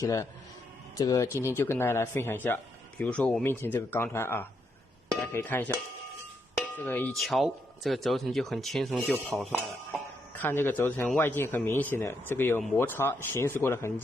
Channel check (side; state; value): both; normal; correlation 0.79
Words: 呢？这个今天就跟大家来分享一下。比如说我面前这个钢团啊，大家可以看一下，这个一敲，这个轴承就很轻松就跑出来了。看这个轴承外径很明显的，这个有摩擦行驶过的痕